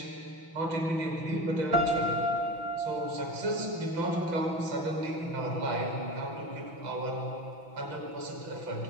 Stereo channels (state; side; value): late; left; 6.0 ms